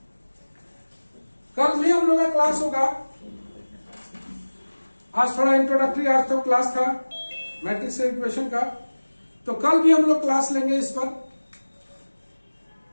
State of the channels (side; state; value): both; inverted; correlation -1.00